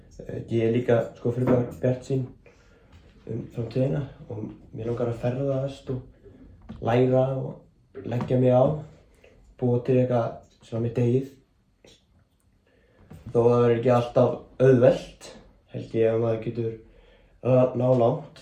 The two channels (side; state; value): both; identical; correlation 1.00